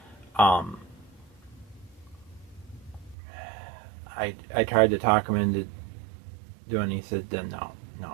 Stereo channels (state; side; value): drops out; left; at 3.2 s